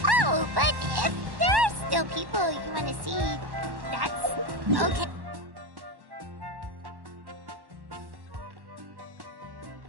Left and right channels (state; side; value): late; left; 1.1 ms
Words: Oh, but if there are still people you want to see, that's okay.